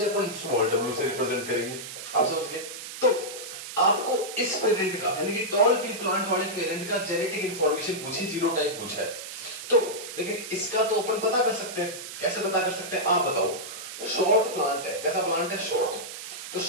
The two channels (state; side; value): noise; right; hiss, 10 dB below the sound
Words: अपन स्मॉल डब्ल्यू से रिप्रेजेंट करेंगे। आप समझ गए? तो आपको इस पेरेंट का, यानी कि टॉल पी प्लांट वाले पेरेंट का जेनेटिक इंफॉर्मेशन पूछी, जीनोटाइप पूछा है। तो लेकिन इसका तो अपन पता कर सकते हैं। कैसे पता कर सकते हैं? आप बताओ। शॉर्ट प्लांट है, कैसा प्लांट है? शॉर्ट। तो